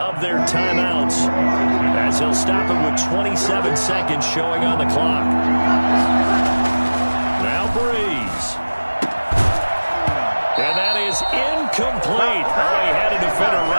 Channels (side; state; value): both; inverted; correlation -1.00